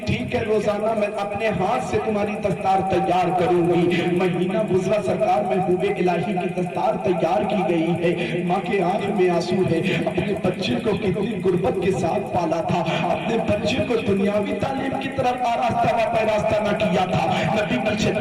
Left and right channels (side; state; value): both; identical; correlation 1.00